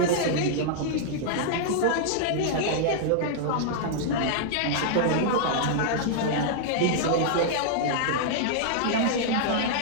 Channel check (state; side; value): different; both; correlation -0.01